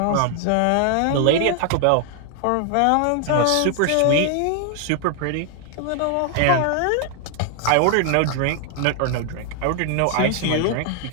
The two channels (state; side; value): different; both; correlation 0.00